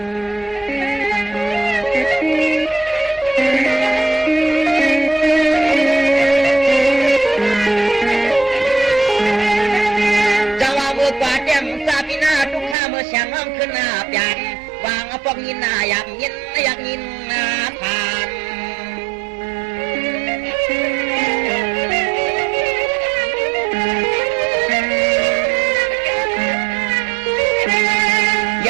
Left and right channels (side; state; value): left; drops out; at 12.8 s